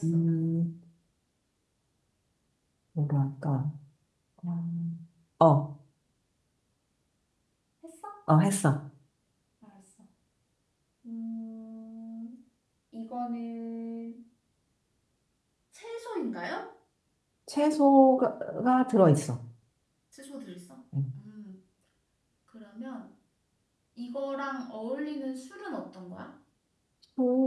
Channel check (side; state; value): both; identical; correlation 1.00